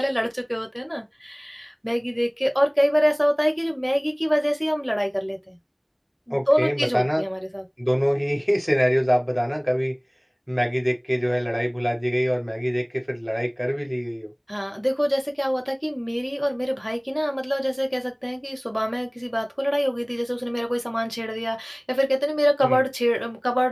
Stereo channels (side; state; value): both; identical; correlation 1.00